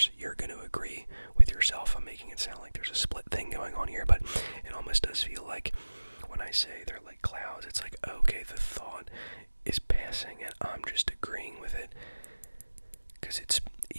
you're going to agree with yourself. I'm making it sound like there's a split thing going on here, but it almost does feel like when I say they're like clouds, it's like, okay, the thought is passing and I'm just agreeing with it because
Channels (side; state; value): both; inverted; correlation -1.00